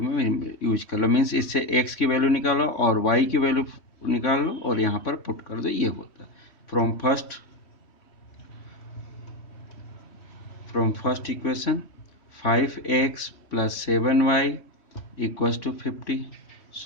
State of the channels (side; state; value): right; late; 3.1 ms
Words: में यूज कर लो. मीन्स इससे x की वैल्यू निकालो और y की वैल्यू निकाल लो और यहाँ पर पुट कर दो. ये होता है from first equation 5x plus 7y equals to 50.